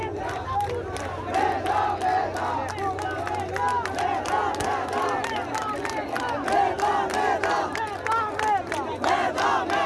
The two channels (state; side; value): identical; both; correlation 1.00